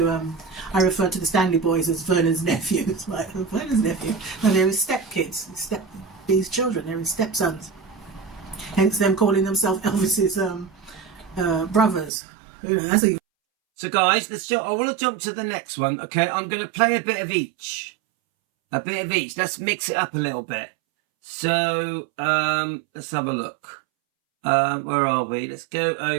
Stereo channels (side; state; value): left; drops out; at 12.1 s